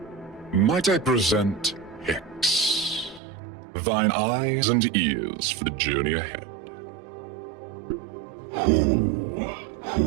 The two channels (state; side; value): drops out; left; at 3.2 s